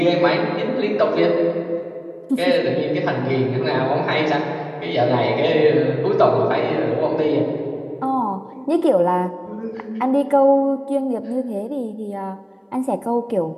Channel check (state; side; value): identical; both; correlation 1.00